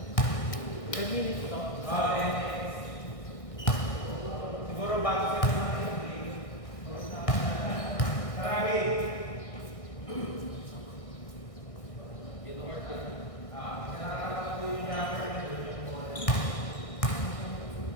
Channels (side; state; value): right; late; 1.6 ms